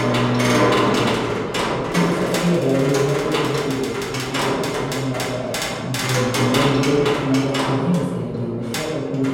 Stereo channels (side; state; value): both; identical; correlation 1.00